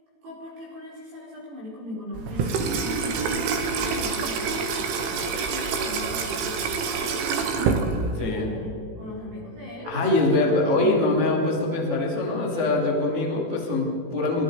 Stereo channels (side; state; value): left; late; 18 ms